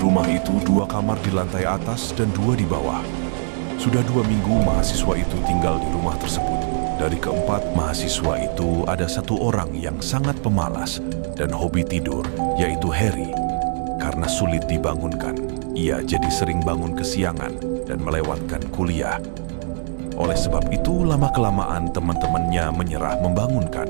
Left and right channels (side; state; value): left; silent; digital silence